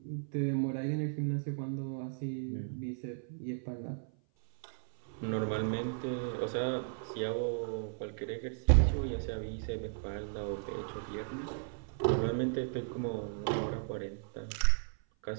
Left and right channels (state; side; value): silent; left; 54 dB below the other